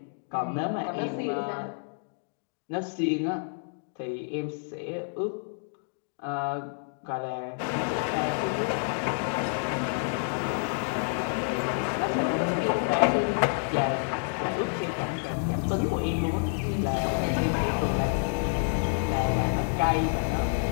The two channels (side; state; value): right; silent; digital silence